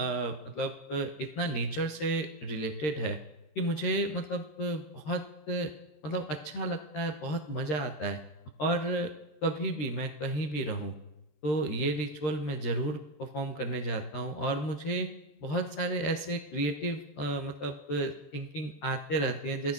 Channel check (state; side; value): late; right; 13 ms